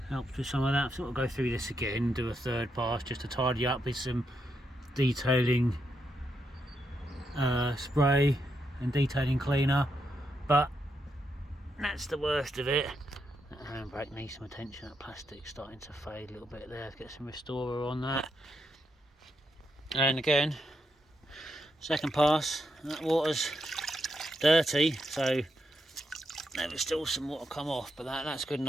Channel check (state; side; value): normal; both; correlation 0.81